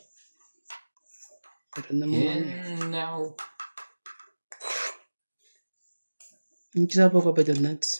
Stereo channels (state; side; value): inverted; both; correlation -1.00